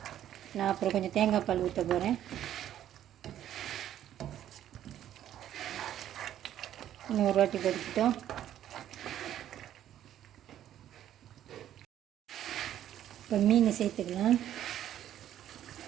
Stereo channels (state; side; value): quieter; left; 11.4 dB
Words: நான் அப்புறம் கொஞ்சம் தேங்காய் பால் ஊற்ற போகிறேன். இன்னும் ஒரு வாட்டி கொதிக்கிட்டோம். இப்போ மீன் சேர்த்துக்கலாம்.